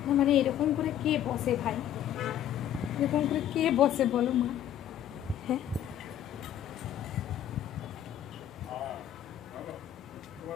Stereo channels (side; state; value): right; quieter; 11.0 dB